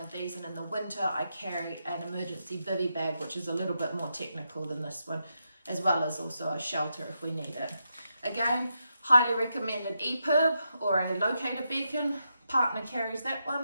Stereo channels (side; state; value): both; inverted; correlation -0.84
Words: these, and in the winter I carry an emergency bivy bag, which is a little bit more technical than this one, as well as also a shelter if we need it. Again, highly recommend an EPIRB or a locator beacon. Partner carries that